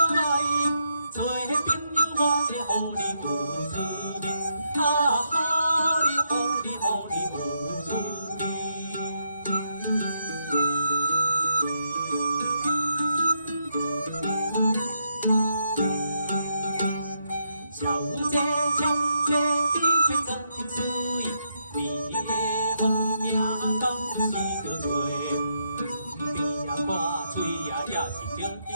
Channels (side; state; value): both; inverted; correlation -0.79